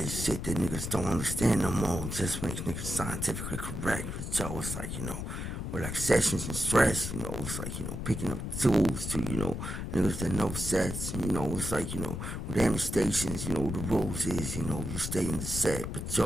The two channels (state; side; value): noise; left; rumble, 5 dB below the sound